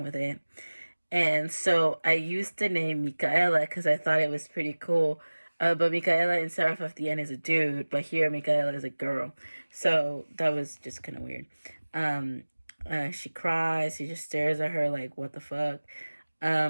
with it. And so I used the name Michaela because I thought it was pretty cool. But Michaela in Seraph of the End is a dude, but here Michaela is a girl. So that was just kind of weird. Um, she cries. He just stares at her like, what the fuck?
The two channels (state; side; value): inverted; both; correlation -1.00